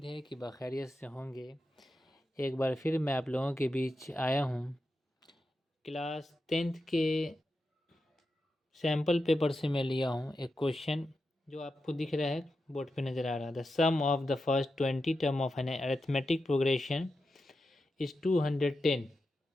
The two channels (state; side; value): normal; both; correlation 0.89